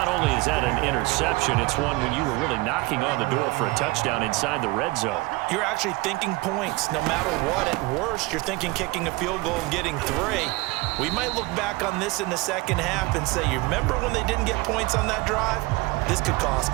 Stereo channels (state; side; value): quieter; left; 22.7 dB